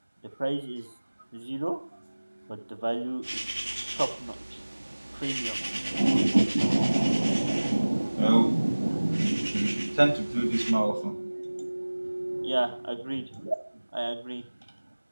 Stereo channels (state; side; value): inverted; both; correlation -1.00